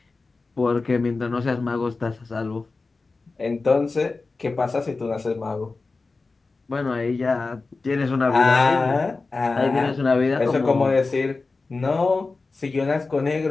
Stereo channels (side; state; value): right; quieter; 3.8 dB